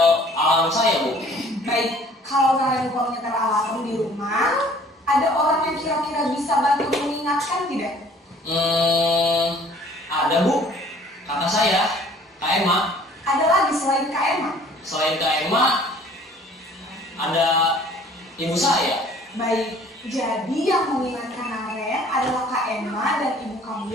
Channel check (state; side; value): normal; both; correlation 0.54